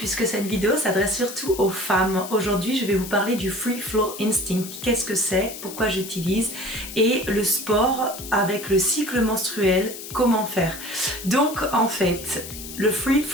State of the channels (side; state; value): left; noise; hiss, 11 dB below the sound